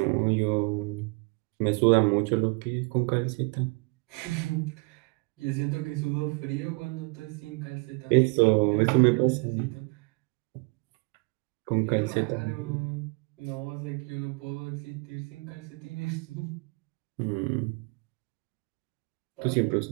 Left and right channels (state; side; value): quieter; left; 31.0 dB